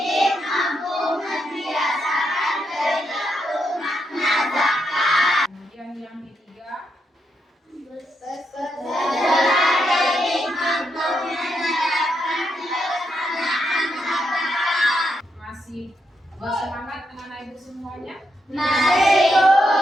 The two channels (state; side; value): normal; both; correlation 0.81